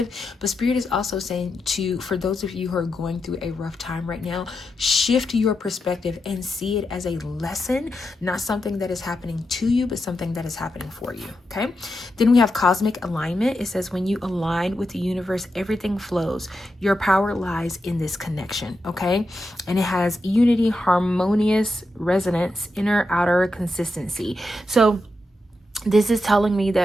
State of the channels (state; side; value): normal; both; correlation 0.86